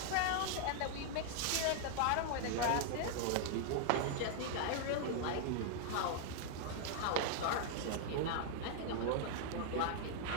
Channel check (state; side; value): different; both; correlation 0.00